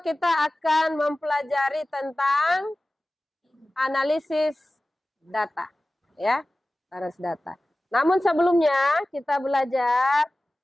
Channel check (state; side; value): normal; both; correlation 0.96